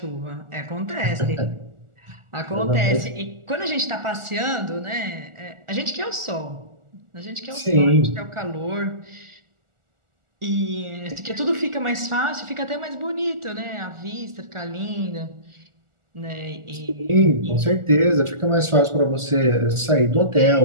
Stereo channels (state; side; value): late; left; 1.4 ms